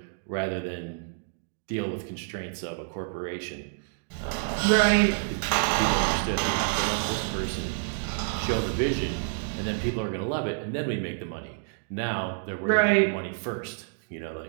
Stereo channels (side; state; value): left; silent; digital silence